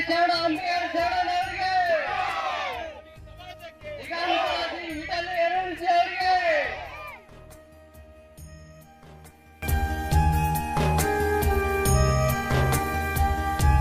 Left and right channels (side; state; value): both; identical; correlation 1.00